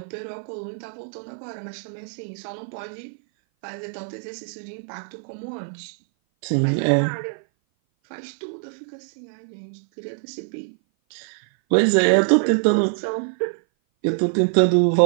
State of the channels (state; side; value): silent; left; 57 dB below the other